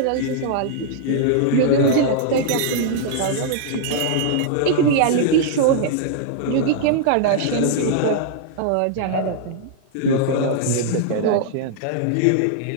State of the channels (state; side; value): different; both; correlation -0.01